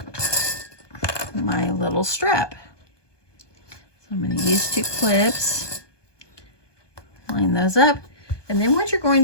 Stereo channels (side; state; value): right; late; 1.2 ms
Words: little strap. So I'm going to use 2 clips, line those up. And then what you're